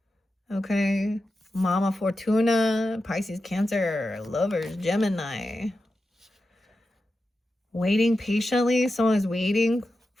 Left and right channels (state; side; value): normal; both; correlation 0.91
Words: Okay. Mama Fortuna, Pisces, Cancer, Lovers, Gemini. Waiting patiently. Someone is waiting